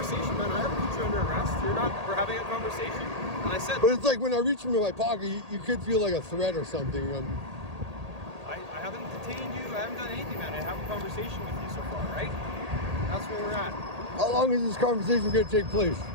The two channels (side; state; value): left; late; 1.8 ms